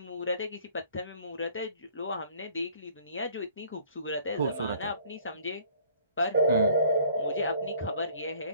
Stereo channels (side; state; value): both; inverted; correlation -0.55